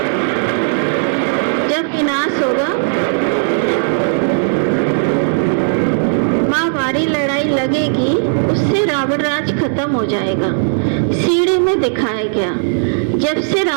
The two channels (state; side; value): silent; left; digital silence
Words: जब विनाश होगा, महाभारी लड़ाई लगेगी, उससे रावण राज खत्म हो जाएगा। सीढ़ी में दिखाया गया, जब से